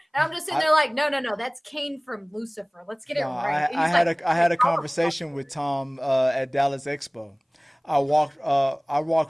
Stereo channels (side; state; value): both; identical; correlation 1.00